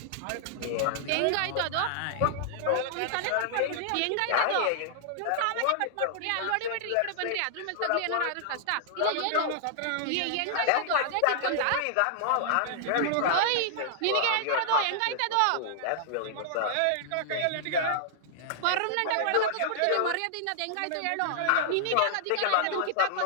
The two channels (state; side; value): different; both; correlation -0.01